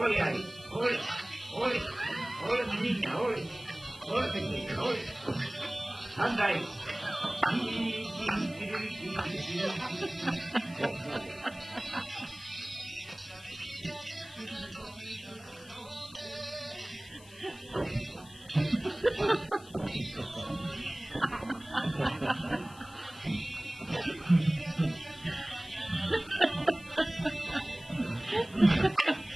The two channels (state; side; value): noise; left; hiss, 22 dB below the sound